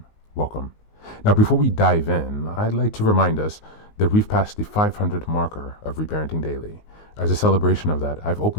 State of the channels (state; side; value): late; right; 19 ms